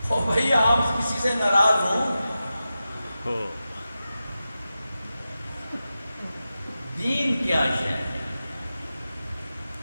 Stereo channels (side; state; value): both; inverted; correlation -0.92